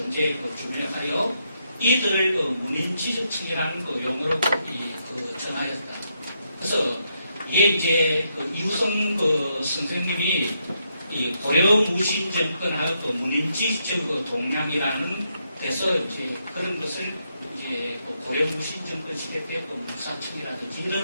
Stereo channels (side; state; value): both; inverted; correlation -0.79